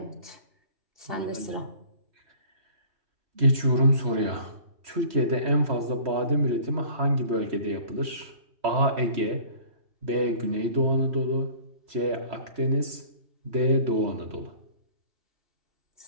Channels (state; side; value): late; left; 3.1 ms